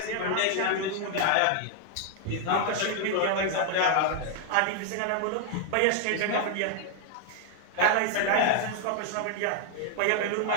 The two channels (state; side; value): different; both; correlation 0.00